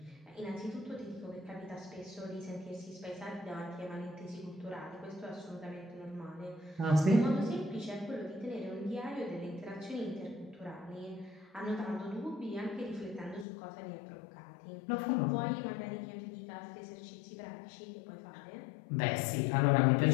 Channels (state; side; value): drops out; right; at 13.5 s